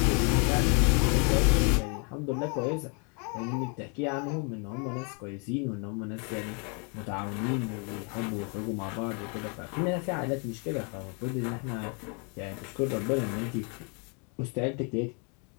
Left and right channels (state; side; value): quieter; right; 36.3 dB